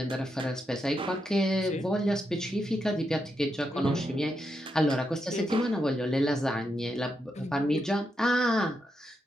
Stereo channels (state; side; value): normal; both; correlation 0.84